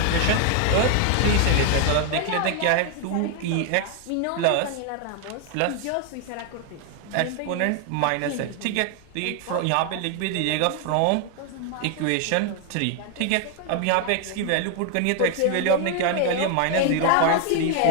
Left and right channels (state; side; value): different; both; correlation 0.01